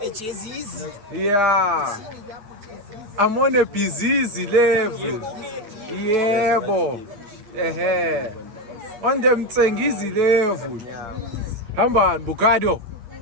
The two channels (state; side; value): late; left; 9.2 ms